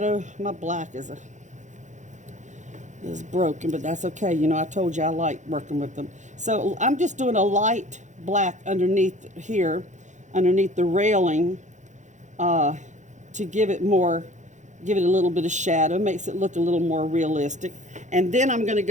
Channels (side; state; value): left; late; 0.35 ms